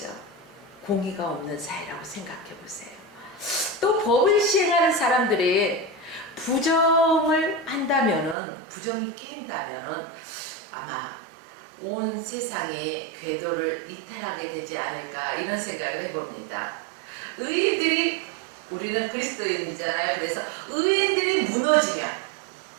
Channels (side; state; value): left; drops out; at 8.3 s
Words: 공의가 없는 사회라고 생각해 보세요. 또 법을 시행하는 사람들이 부정을 한다면은, 부정이 끼인다면은 아마 온 세상이 궤도를 이탈하게 되지 않을까, 이런 생각을 해봅니다. 의인들이, 우리는 그리스도인이잖아요. 그래서 의인들이 무너지면,